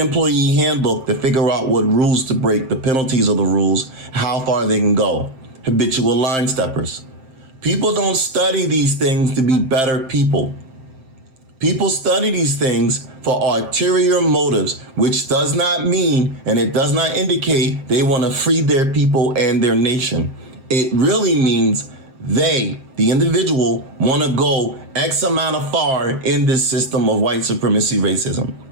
handbook to figure out what rules to break, the penalties of the rules, how far they can go. Habitual line steppers. People don't study these things to be better people. People study these things for ulterior motives, which does not mean, and it does not indicate they want to free their people and their nation. It really means they, the individual, want to go X amount of far in this system of white supremacy racism.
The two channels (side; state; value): left; late; 7.6 ms